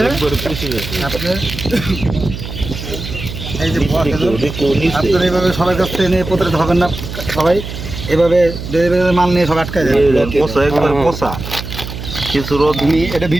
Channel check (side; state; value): right; noise; hum, 9 dB below the sound